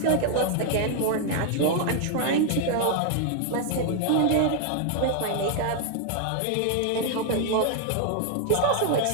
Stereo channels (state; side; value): different; both; correlation 0.00